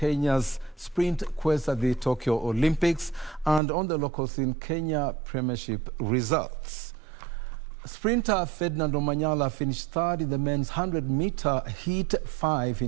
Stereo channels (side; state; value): left; drops out; at 3.6 s